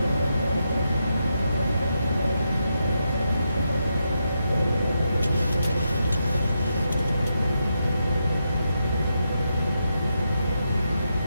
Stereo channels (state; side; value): inverted; both; correlation -0.84